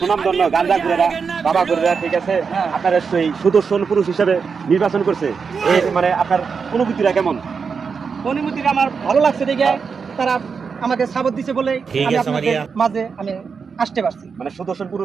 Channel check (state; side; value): quieter; left; 5.6 dB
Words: গাঁজা ঘুরেরা বাবা ঘুরেরা ঠিক আছে আপনার সেই সুদর্শন পুরুষ হিসেবে নির্বাচন করছে। এই মানে আপনার অনুভূতিটা কেমন? অনুমতিটা আমার ভালো লাগছে দেখে তারা আমাকে সাপোর্ট দিছে বলে ঠিক আমি আছে, আপনাদের মারিয়া। মাঝে আমি আসতে পারছি। মানে সুদর্শন